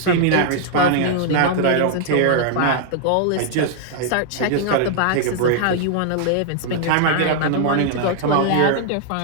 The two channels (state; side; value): different; both; correlation -0.01